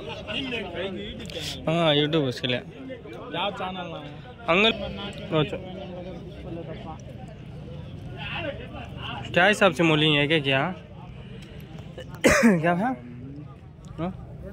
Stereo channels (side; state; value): both; identical; correlation 1.00